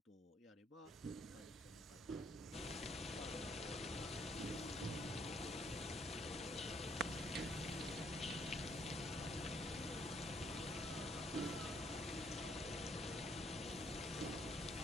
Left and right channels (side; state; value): both; normal; correlation 0.69